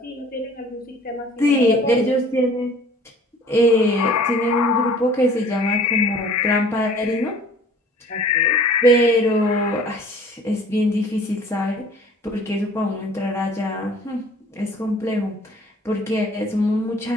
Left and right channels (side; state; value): both; normal; correlation 0.50